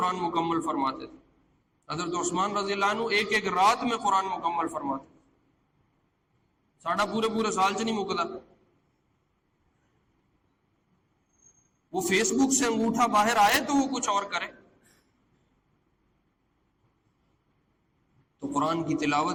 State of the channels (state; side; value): identical; both; correlation 1.00